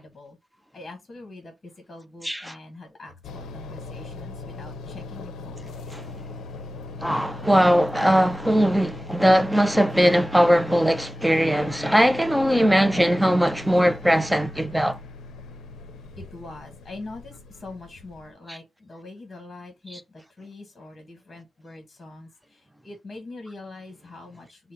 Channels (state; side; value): normal; both; correlation 0.96